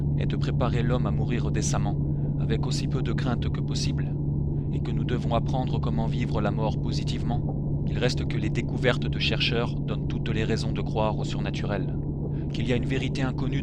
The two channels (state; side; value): identical; both; correlation 1.00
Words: est de préparer l'homme à mourir décemment, avec aussi peu de crainte que possible, et que nous devons apprendre comment vivre la mort positivement, il reste que les découvertes de chercheurs donnent toutes les raisons de croire au surnaturel, qu'il y a une vérité inconnue